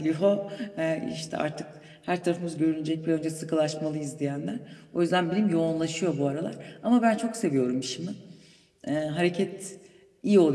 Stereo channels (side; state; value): both; identical; correlation 1.00